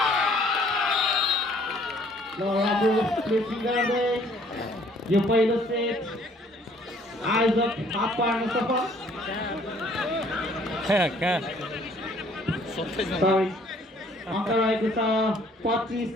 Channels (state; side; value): normal; both; correlation 0.60